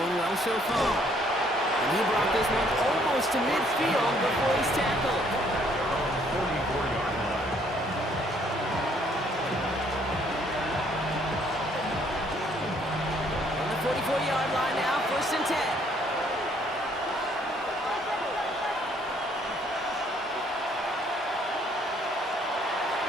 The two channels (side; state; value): both; normal; correlation 0.65